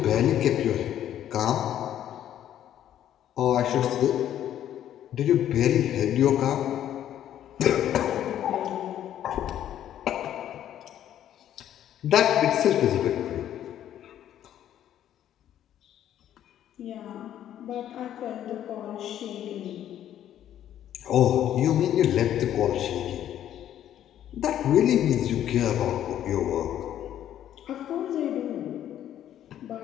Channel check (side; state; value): right; quieter; 11.1 dB